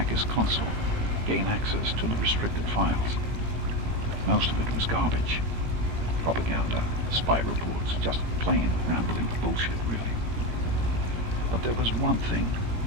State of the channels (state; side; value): late; left; 17 ms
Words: his console, gain access to the restricted files. Most of it was garbage. Propaganda, spy reports, just plain rambling bullshit, really. But there was one thing,